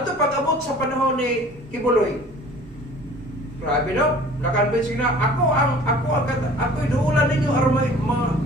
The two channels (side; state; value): both; normal; correlation 0.48